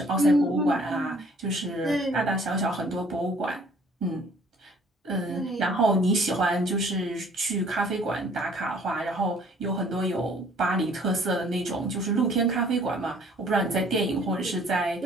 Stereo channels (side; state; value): both; normal; correlation 0.56